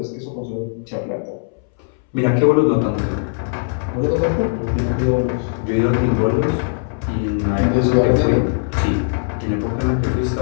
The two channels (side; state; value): right; silent; 66 dB below the other